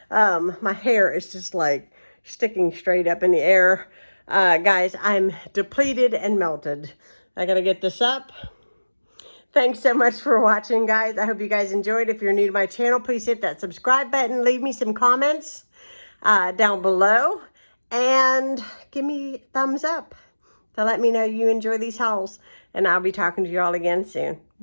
My hair is just like sticking straight up in the air. Guys, I'm depleted and melted. I gotta get this up. Thanks so much for watching, guys. I hope you guys enjoyed. If you're new to my channel, please hit that subscribe button. Leave me some comments down below. And give me a thumbs up to let me know you enjoy these hauls. And I'll be talking to you all again soon.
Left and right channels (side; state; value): both; inverted; correlation -1.00